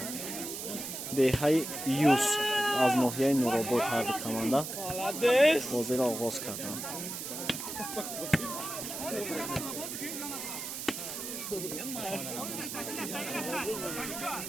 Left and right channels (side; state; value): right; noise; hiss, 6 dB below the sound